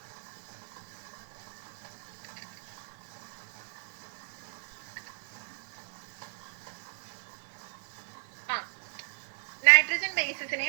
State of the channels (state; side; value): silent; left; 55 dB below the other